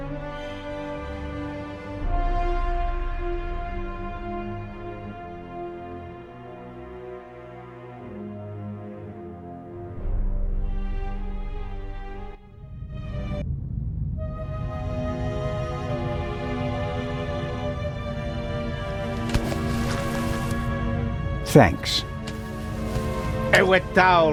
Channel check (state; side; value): identical; both; correlation 1.00